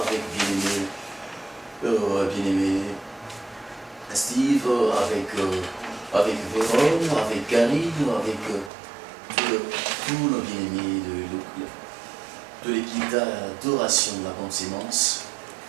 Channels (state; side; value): drops out; left; at 8.7 s